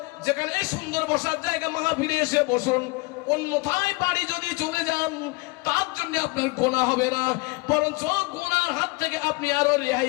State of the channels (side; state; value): right; quieter; 25.7 dB